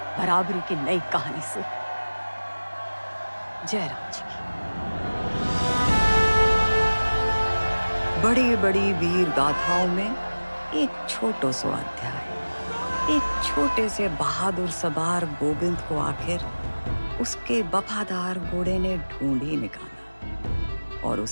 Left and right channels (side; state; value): both; inverted; correlation -1.00